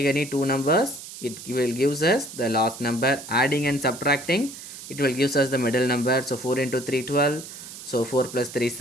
two numbers, it will gives us the last number. Adding and subtracting, it will gives us the middle number. So 4 into 3 12. So 4 plus 3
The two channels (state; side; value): noise; right; hiss, 13 dB below the sound